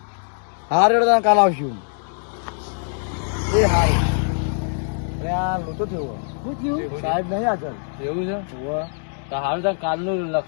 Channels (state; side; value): silent; right; digital silence